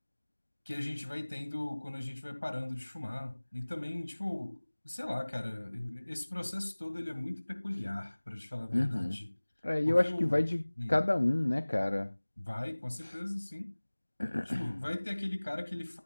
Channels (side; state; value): both; inverted; correlation -1.00